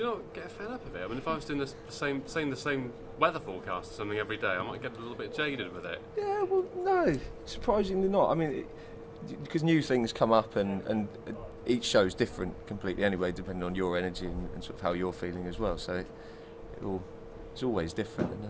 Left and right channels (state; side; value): identical; both; correlation 1.00